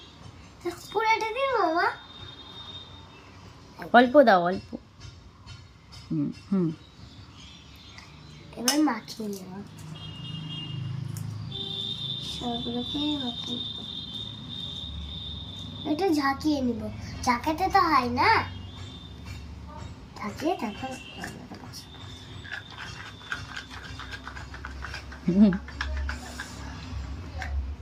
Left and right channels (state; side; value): identical; both; correlation 1.00